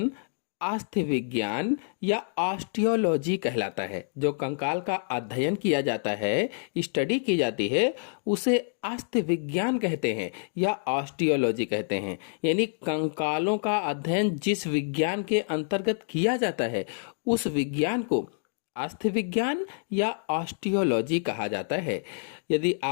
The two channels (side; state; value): right; silent; digital silence